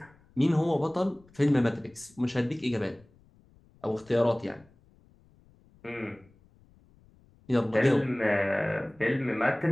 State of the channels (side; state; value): left; noise; rumble, 29 dB below the sound